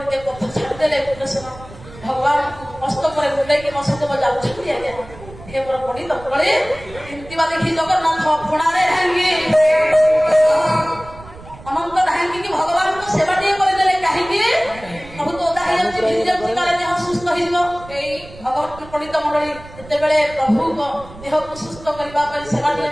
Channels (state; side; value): noise; right; rumble, 18 dB below the sound